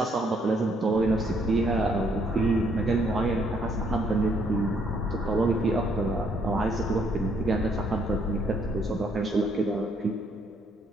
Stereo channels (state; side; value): normal; both; correlation 0.68